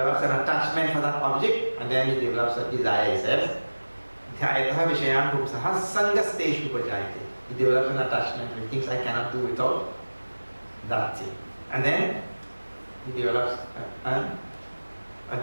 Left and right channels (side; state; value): both; inverted; correlation -1.00